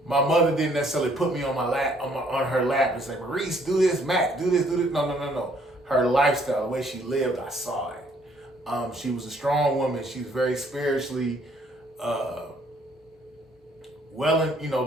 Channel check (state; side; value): normal; both; correlation 0.64